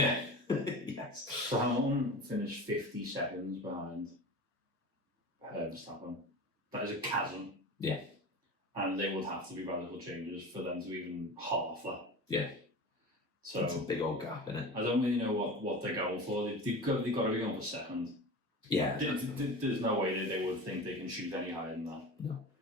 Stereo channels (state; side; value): normal; both; correlation 0.32